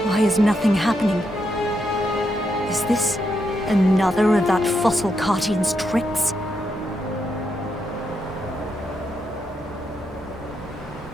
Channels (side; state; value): both; normal; correlation 0.81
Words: Why is nothing happening? Is this another of that fossil Cartian's tricks?